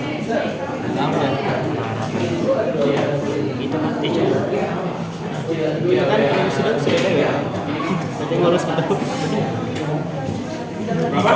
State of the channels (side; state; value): both; identical; correlation 1.00